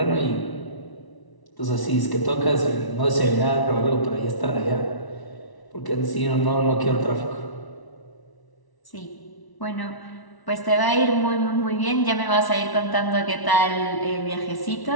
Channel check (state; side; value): late; right; 1.1 ms